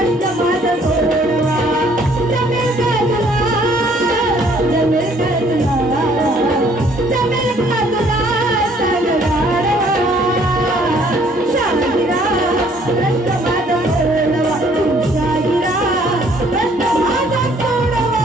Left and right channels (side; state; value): both; normal; correlation 0.61